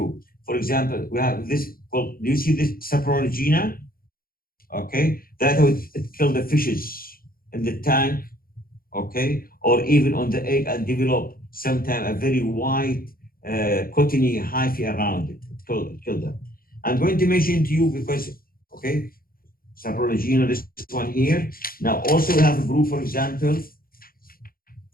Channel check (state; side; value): late; right; 0.42 ms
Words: For example, we have this called. Do you see this Saprologina? Okay, that would kill the fishes in the tank. Okay, or even on the egg and develop sometimes a very white, cottony hyphae around it. Kill them. I'm going to mention to you because, okay, Saprologina, this one here. Now, also we have a group, for example,